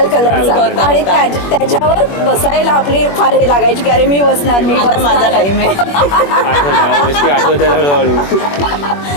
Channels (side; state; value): right; late; 21 ms